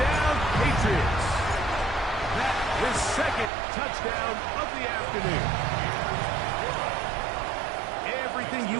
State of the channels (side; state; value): left; drops out; at 3.5 s